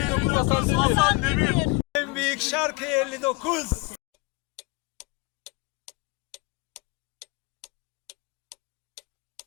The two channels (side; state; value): right; quieter; 25.3 dB